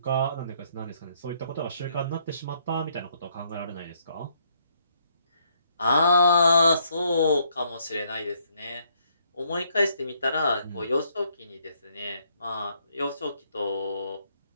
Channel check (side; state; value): both; inverted; correlation -0.71